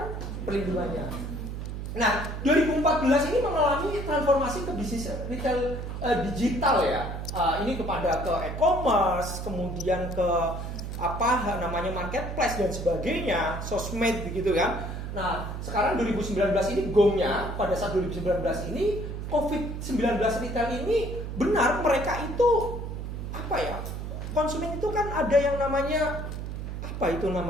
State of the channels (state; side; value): noise; right; hum, 6 dB below the sound